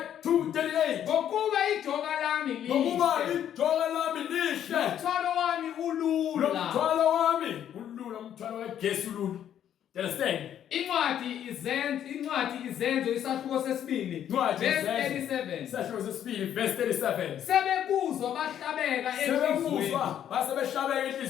Ngokuba ijoka lami lihle. Umthwalo wami ulula. Umthwalo kaJesu ulula. Understand? Incwadi izenzo isahluko sesibili verse 37. Isahluko sesibili verse 37. Sebekuzwa bahlabeka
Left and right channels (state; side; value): quieter; right; 10.1 dB